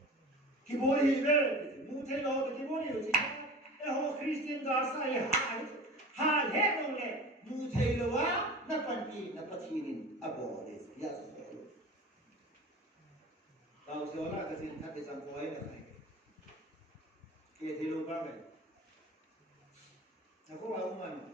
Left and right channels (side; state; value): both; normal; correlation 0.36